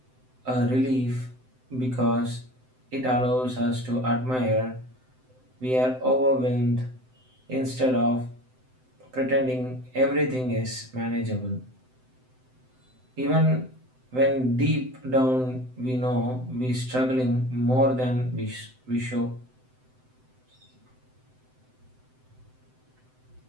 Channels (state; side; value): late; left; 7.8 ms